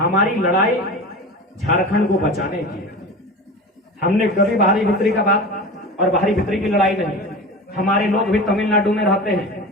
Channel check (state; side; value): normal; both; correlation 0.31